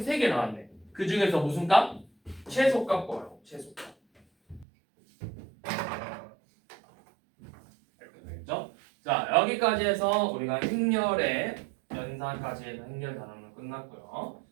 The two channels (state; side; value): drops out; left; at 4.7 s